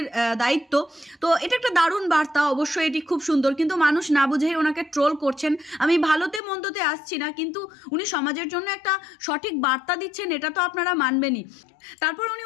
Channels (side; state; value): right; drops out; at 6.4 s